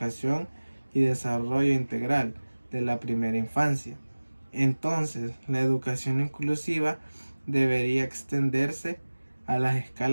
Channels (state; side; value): inverted; both; correlation -1.00